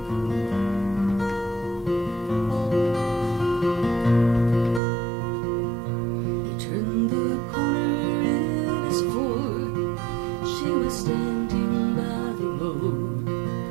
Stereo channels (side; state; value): left; drops out; at 4.8 s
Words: Standing by the road,